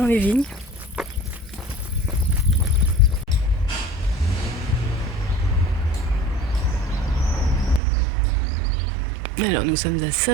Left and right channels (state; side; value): drops out; left; at 7.8 s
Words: les vignes. Alors nous sommes à